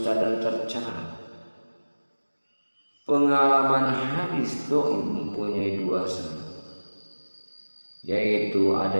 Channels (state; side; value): inverted; both; correlation -1.00